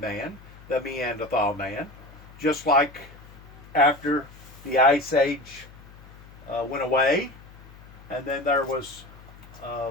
the Neanderthal man, just like after the Ice Age went away, and then there was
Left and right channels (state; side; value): noise; left; hum, 20 dB below the sound